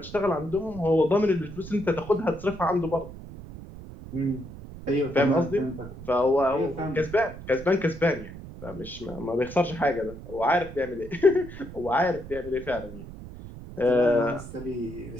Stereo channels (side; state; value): right; noise; rumble, 13 dB below the sound